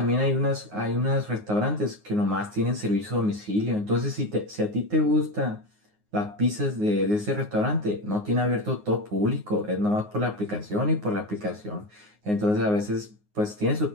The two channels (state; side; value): late; left; 9.6 ms